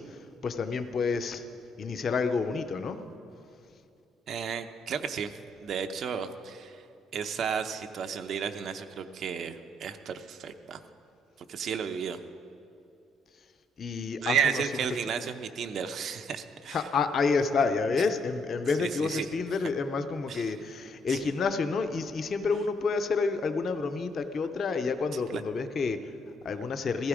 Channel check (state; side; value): normal; both; correlation 0.72